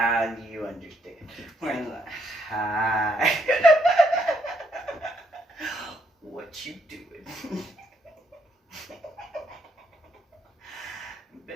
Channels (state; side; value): normal; both; correlation 0.73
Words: you understand. When hi, what you doing?